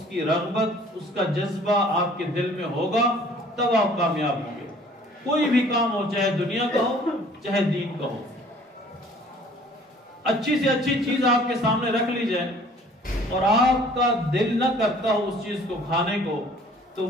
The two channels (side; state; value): both; normal; correlation 0.53